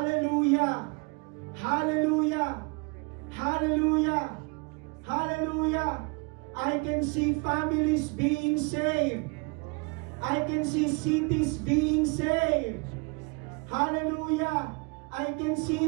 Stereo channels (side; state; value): left; quieter; 31.7 dB